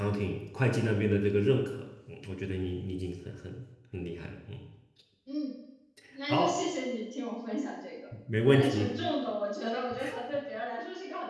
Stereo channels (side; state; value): both; identical; correlation 1.00